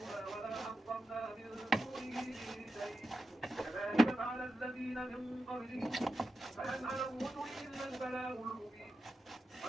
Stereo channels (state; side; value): normal; both; correlation 0.90